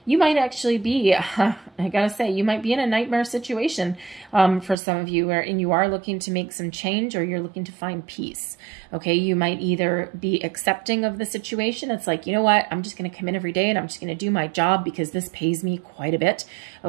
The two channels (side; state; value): left; drops out; at 4.8 s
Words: You might actually be, I gotta say, you might be in a nightmare situation for some of you, and you are looking to make some change, or you're looking to find peace, okay? You might either be accepting of the situation. It's like, you know what, I'm just gonna come in every day and I'm just gonna do my job because this pays me quite a bit,